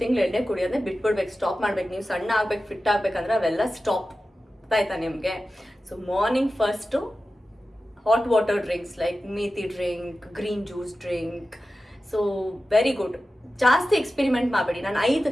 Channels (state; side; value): normal; both; correlation 0.94